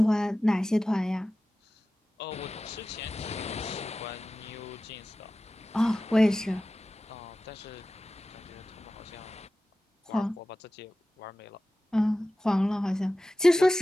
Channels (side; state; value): both; normal; correlation 0.95